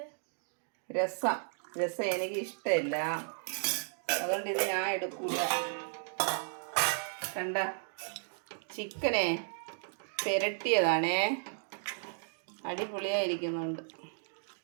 രസം എനിക്ക് ഇഷ്ടമില്ല, അതുകൊണ്ട് ഇത് ഞാൻ എടുക്കൂല. കണ്ട ചിക്കനെ പെരട്ടിയതാണേ, അടിപൊളിയായിരിക്കുന്നുണ്ട്.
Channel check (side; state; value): left; silent; digital silence